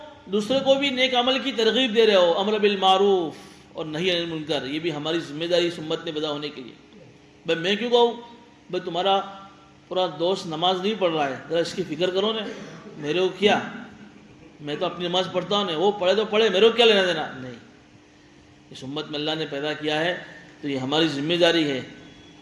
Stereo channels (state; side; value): identical; both; correlation 1.00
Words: دوسرے کو بھی نیک عمل کی ترغیب دے رہے ہو، امر بالمعروف اور نہی عن المنکر، یہ بھی ہماری ذمہ داری اس امت میں پیدا ہونے کے لیے۔ بھائی میں کیوں کہوں؟ بھائی تمہارا پورا دوست نماز نہیں پڑھ رہا ہے، ذرا اس کی فکر کرو نا، میرے کو کیا، میں تو اپنی نماز پڑھتا ہوں، وہ پڑھے تو پڑھے، میرے کو کیا لینا دینا؟ نہیں، اس امت میں اللہ نے پیدا کیا ہے تو یہ ہماری ذمہ داری ہے،